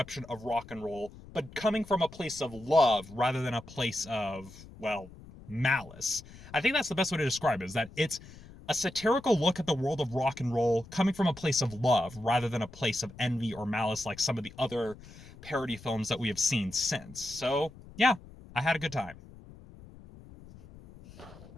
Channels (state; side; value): noise; left; rumble, 19 dB below the sound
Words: of rock and roll, but coming from a place of love rather than a place of, well, malice. I think that's the best way to describe it, is that it's a satirical look at the world of rock and roll coming from a place of love rather than a place of envy or malice like some of the other parody films that we have seen since. So, yeah, I had a good time.